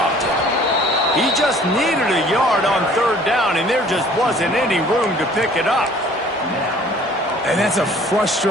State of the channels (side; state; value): both; normal; correlation 0.53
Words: it. He just needed a yard on 3rd down, and there just wasn't any room to pick it up. And that's a